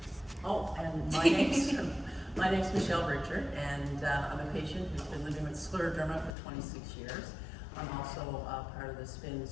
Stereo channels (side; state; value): right; drops out; at 6.3 s